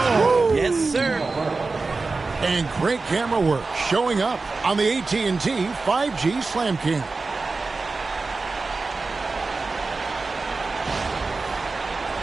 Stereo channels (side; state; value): left; quieter; 3.9 dB